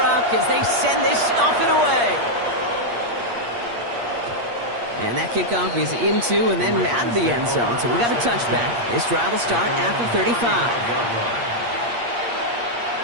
as they send this off and away. And that kickoff is into and then out of the end zone. So we got a touchback. This drive will start at the 35.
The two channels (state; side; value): late; left; 8.5 ms